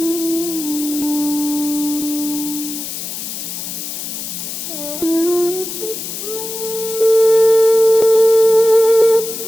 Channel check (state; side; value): noise; left; hiss, 7 dB below the sound